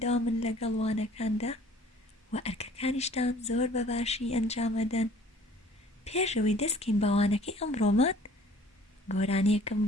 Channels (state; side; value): normal; both; correlation 0.53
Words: لەگەڵ وانەکاندا و ئەرکەکانیشتان زۆر بەباشی ئەنجامەدەن. پێشەوەی دەستکەین بە وانەکەی ئەمڕۆمان گۆرانیەکەم